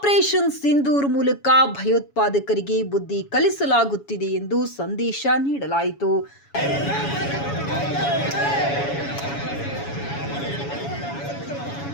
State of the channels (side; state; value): right; late; 7.1 ms